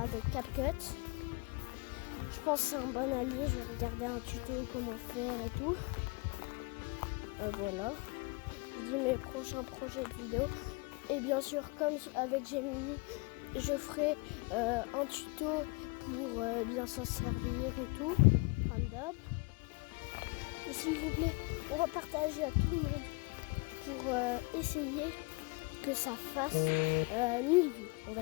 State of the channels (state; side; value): quieter; right; 28.1 dB